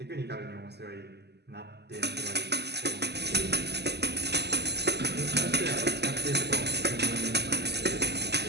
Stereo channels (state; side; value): late; left; 0.49 ms